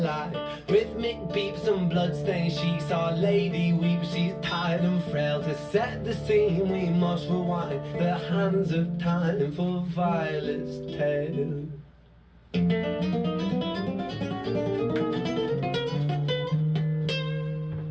Rhythmic beeps and bloodstained sheets, our lady weeps, she's tired and frail. To set the scene we must rewind the hands of time for Violet's tale.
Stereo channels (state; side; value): identical; both; correlation 1.00